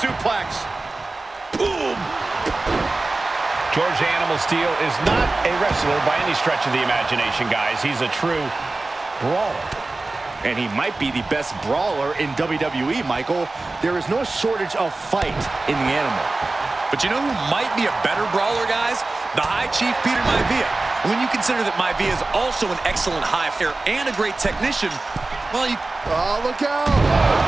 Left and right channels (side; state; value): left; quieter; 3.2 dB